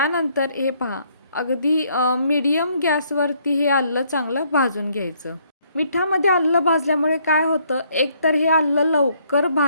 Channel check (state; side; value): inverted; both; correlation -0.67